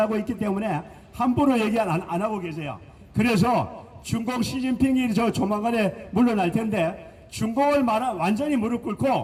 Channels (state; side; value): identical; both; correlation 1.00